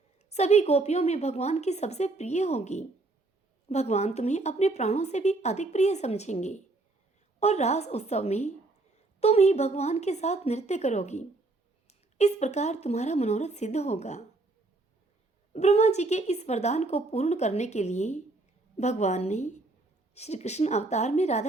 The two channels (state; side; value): quieter; left; 3.2 dB